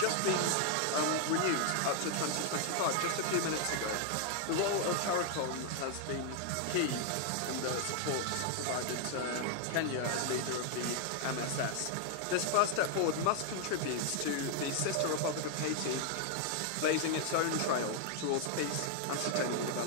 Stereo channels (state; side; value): different; both; correlation 0.00